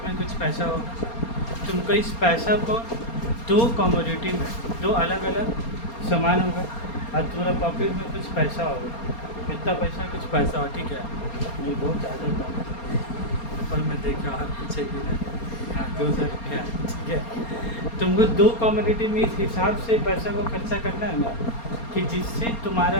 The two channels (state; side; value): late; right; 4.3 ms